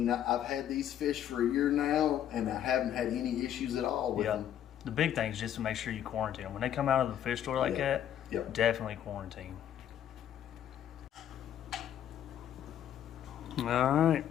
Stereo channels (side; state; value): right; quieter; 10.4 dB